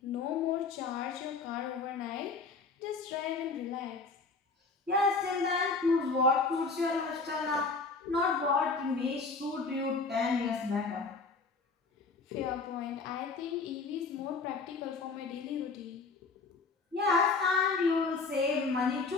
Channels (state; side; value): quieter; right; 4.2 dB